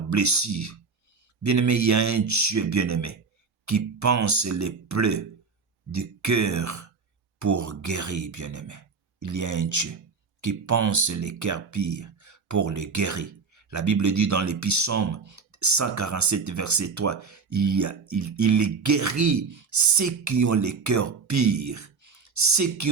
Bien-aimé, il y a un Dieu, bien-aimé, qui pense les plaies du cœur pour guérir, bien-aimé. Il y a un Dieu qui pense les cœurs pires pour les guérir. La Bible dit dans les Psaumes 147, verset 3, il guérit ceux qui ont les cœurs pires, ceux qui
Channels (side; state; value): left; quieter; 5.0 dB